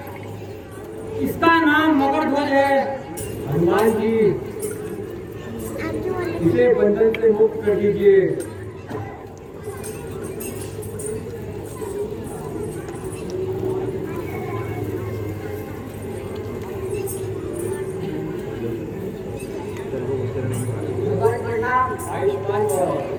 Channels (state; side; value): identical; both; correlation 1.00